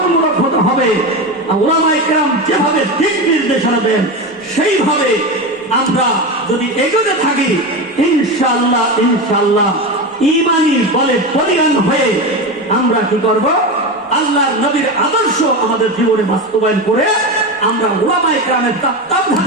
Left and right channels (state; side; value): normal; both; correlation 0.20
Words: হতে হবে। উলামায়ে কেরাম যেভাবে দিক নির্দেশনা দেন, সেইভাবে আমরা যদি এগোতে থাকি, ইনশাআল্লাহ ঈমানি বলে বলীয়ান হয়ে আমরা কি করব? আল্লাহর নবীর আদর্শ আমাদের জীবনে বাস্তবায়ন করে আমরা উলামায়ে কেরামের